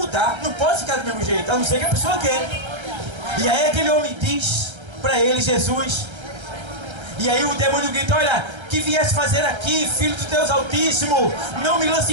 Não pode ficar do mesmo jeito, a não ser que a pessoa quer. E aí aquele homem diz para ele, Jesus. E aí o demônio grita, olha, que viesse fazer aqui, filho de Deus Altíssimo, não me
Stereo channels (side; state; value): left; late; 1.3 ms